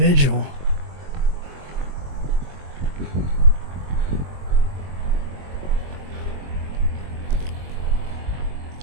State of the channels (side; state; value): left; late; 22 ms